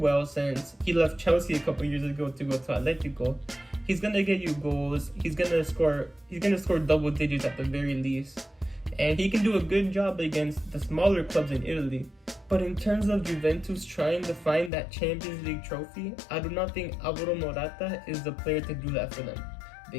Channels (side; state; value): right; drops out; at 14.7 s